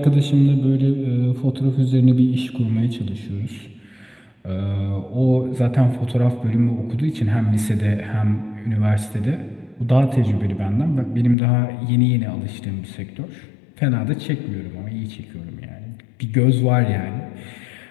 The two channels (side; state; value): right; drops out; at 11.4 s